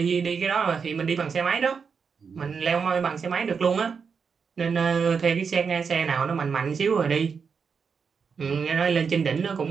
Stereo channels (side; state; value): left; quieter; 5.9 dB